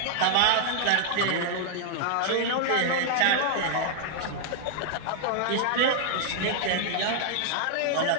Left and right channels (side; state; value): both; different; correlation -0.01